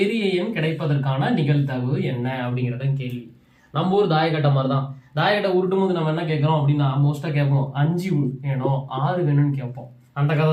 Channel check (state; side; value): identical; both; correlation 1.00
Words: எண் கிடைப்பதற்கான நிகழ்தகவு என்ன அப்படிங்கிறத கேள்வி. நம்ம ஊர் தாயக்கட்டை மாதிரி தான். தாயக்கட்டை உருட்டும் போது நம்ம என்ன கேட்கறோம் அப்படின்னா, மோஸ்டா கேட்போம் 5 வேணும் 6 வேணும்னு கேட்போம். அந்த கதை